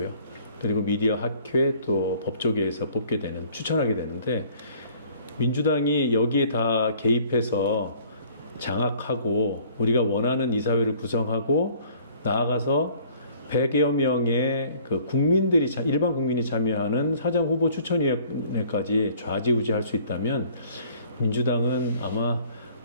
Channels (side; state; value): both; inverted; correlation -0.56